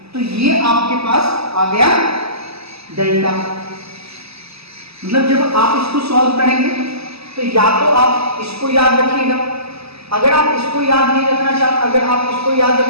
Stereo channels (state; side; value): late; left; 0.78 ms